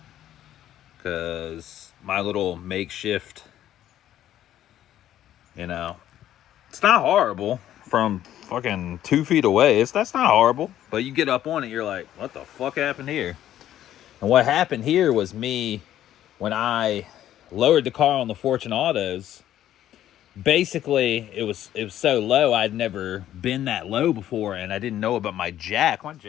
because my little makeshift, you know, it's not horrible from fucking 2 feet away. That's not horrible, but you get up on it, you're like, what the fuck happened here? And what happened here was me, when I lowered the car on the Fortune Autos, basically it was so low, I'd never been that low before, and I didn't know about my jack. My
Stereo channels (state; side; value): quieter; right; 12.0 dB